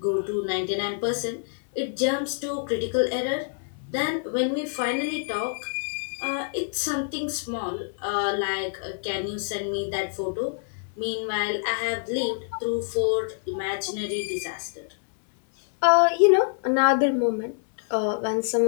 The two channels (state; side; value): silent; right; 61 dB below the other